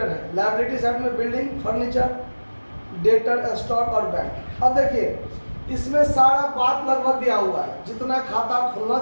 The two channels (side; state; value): both; inverted; correlation -1.00